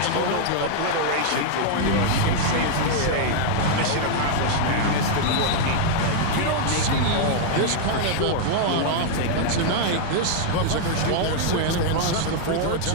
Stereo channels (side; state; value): both; different; correlation -0.01